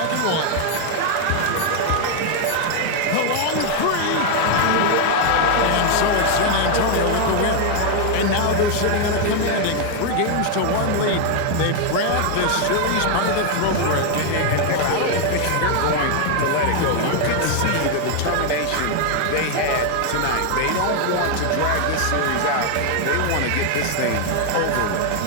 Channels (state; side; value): different; both; correlation 0.00